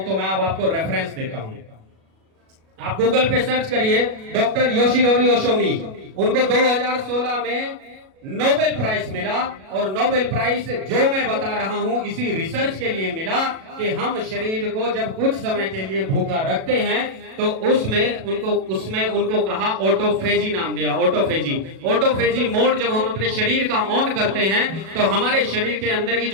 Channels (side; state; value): left; late; 37 ms